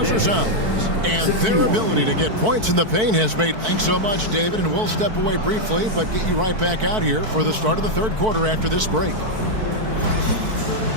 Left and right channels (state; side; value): late; left; 4.6 ms